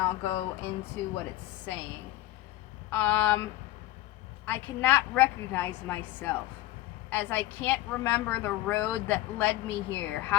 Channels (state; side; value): quieter; right; 15.9 dB